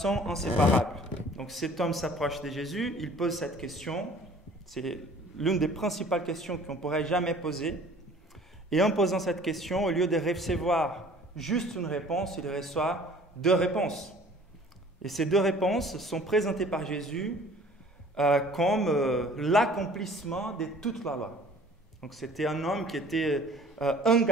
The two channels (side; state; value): both; normal; correlation 0.50